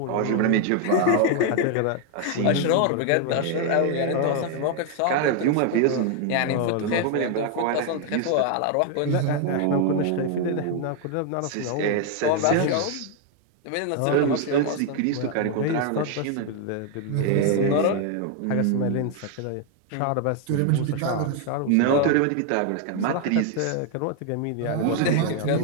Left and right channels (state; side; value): different; both; correlation 0.00